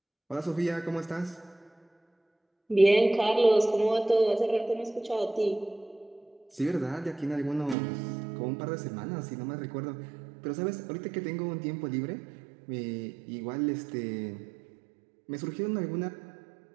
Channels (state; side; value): drops out; left; at 7.8 s